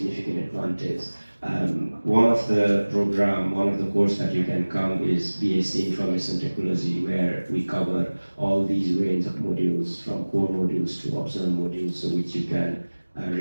advantage. One of the course that you can come is BSc Information Technology, where we cover all these range of modules, from core modules to optional modules, so which you can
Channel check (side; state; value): both; inverted; correlation -1.00